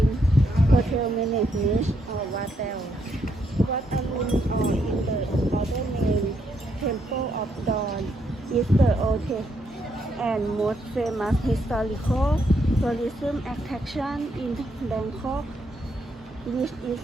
hotel management or Watel. Wat Arun, or in the other name Temple of Dawn, is the oldest and most famous historical tourism attraction in Bangkok, which is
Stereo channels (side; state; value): both; normal; correlation 0.76